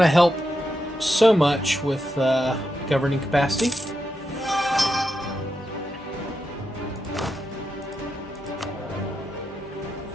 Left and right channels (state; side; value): normal; both; correlation 0.86